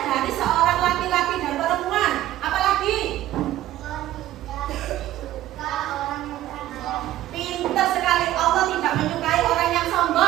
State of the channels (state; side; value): quieter; left; 14.1 dB